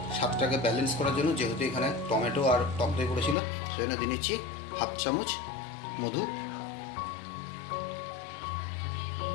স্বাদটাকে ব্যালেন্স করার জন্য, যেহেতু এখানে টমেটো আর টক দই পড়েছিল, সেই জন্য দিয়ে নিচ্ছি 1/2 চামচ মধু।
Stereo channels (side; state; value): right; drops out; at 3.4 s